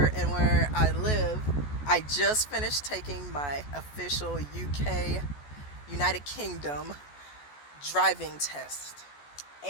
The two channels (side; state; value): right; late; 14 ms